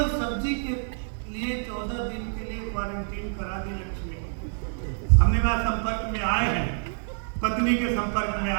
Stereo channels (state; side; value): silent; left; 60 dB below the other